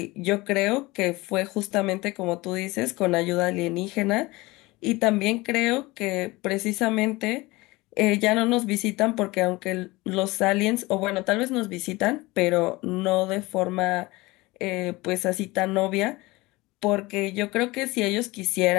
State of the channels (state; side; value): quieter; right; 21.7 dB